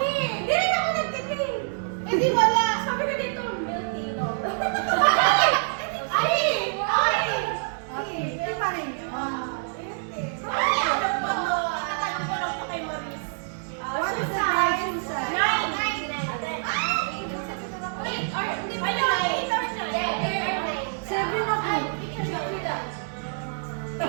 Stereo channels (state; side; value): silent; left; digital silence